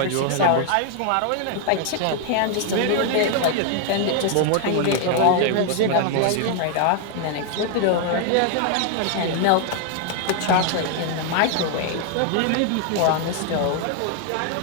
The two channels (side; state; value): both; different; correlation 0.00